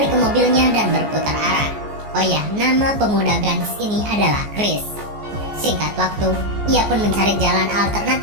ke mobilnya dan berputar arah. Oh ya, nama pemuda ganteng ini adalah Chris. Singkat waktu, ia pun mencari jalan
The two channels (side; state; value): left; late; 14 ms